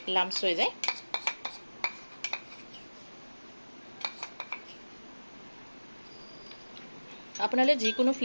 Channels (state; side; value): inverted; both; correlation -1.00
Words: লাম্পছ হৈ যায়। আপোনালোকে যিকোনো